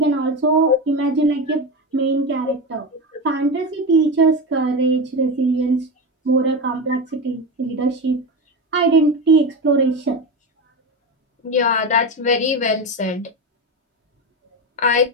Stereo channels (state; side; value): normal; both; correlation 0.19